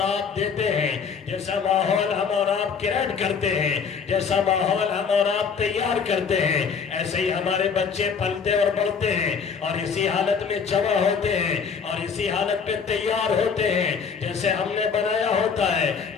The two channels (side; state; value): right; quieter; 6.1 dB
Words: آپ دیتے ہیں، جیسا ماحول ہم اور آپ کریٹ کرتے ہیں، جیسا ماحول ہم اور آپ تیار کرتے ہیں، ایسے ہی ہمارے بچے پلتے اور بڑھتے ہیں اور اسی حالت میں جمع ہوتے ہیں اور اسی حالت پہ تیار ہوتے ہیں جیسے ہم نے بنایا ہوتا ہے،